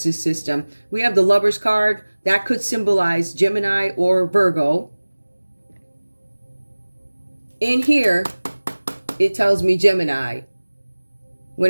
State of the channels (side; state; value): both; inverted; correlation -1.00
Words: system. We have the Lovers card. That could symbolize Gemini or Virgo. In here, it tells me Gemini.